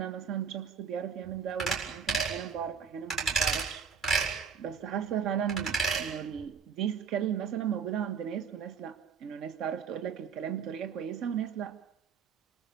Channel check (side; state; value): left; quieter; 6.5 dB